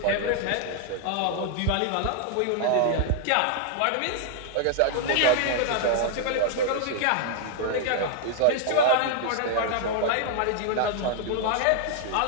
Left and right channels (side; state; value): both; different; correlation 0.00